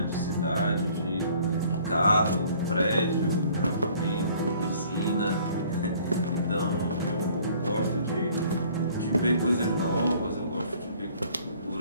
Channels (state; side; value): inverted; both; correlation -0.56